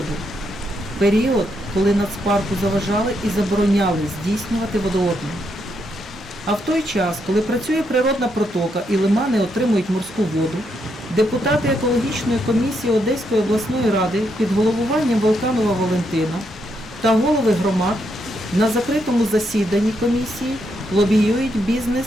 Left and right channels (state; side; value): normal; both; correlation 0.79